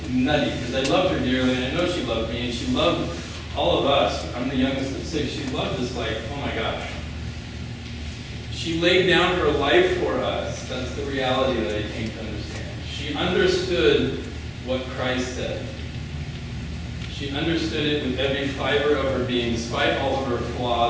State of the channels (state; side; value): identical; both; correlation 1.00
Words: nutty, because I loved her dearly, and I know she loved me, and she loved all of us. I'm the youngest of 6. She loved us like, oh my gosh. She laid down her life for us. That's the reality that I came to understand. She understood what Christ said. She understood it with every fiber of her being, despite all of her